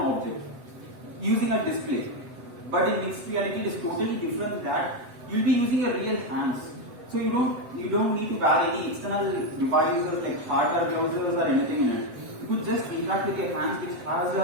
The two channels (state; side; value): late; left; 7.6 ms